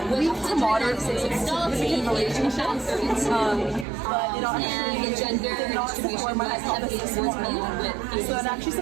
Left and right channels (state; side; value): drops out; left; at 3.9 s